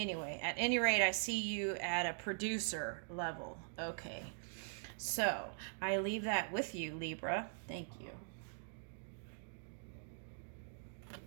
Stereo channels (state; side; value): silent; left; digital silence